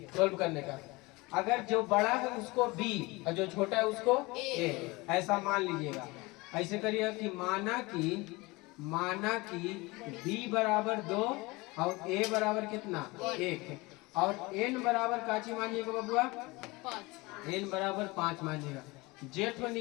सोल्व करने का, अगर जो बड़ा है उसको B और जो छोटा है उसको A, ऐसा मान लीजिएगा। ऐसे करिएगा कि माना कि B बराबर 2 और A बराबर कितना 1, और N बराबर काची मानिएगा बबुआ, 5, N बराबर 5 मानिएगा। जेठ में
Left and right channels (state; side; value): quieter; right; 23.4 dB